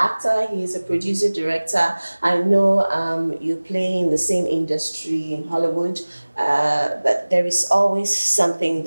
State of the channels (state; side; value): inverted; both; correlation -1.00